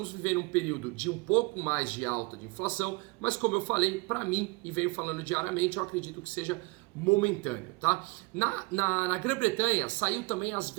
vivendo um período de um pouco mais de alta de inflação, mas como eu falei, para mim, e venho falando diariamente, eu acredito que seja momentâneo, tá? Na Grã-Bretanha saiu também as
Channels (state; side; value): quieter; left; 25.9 dB